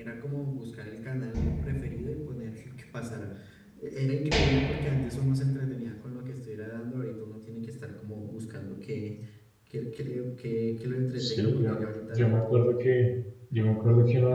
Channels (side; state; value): both; identical; correlation 1.00